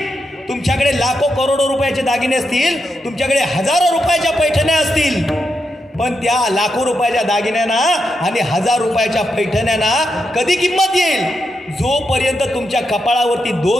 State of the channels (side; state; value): both; normal; correlation 0.84